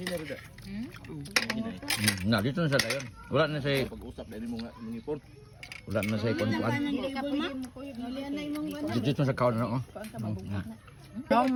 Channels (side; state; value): both; identical; correlation 1.00